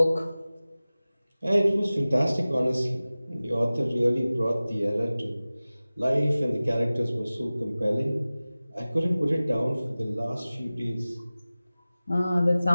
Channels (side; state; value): both; inverted; correlation -0.97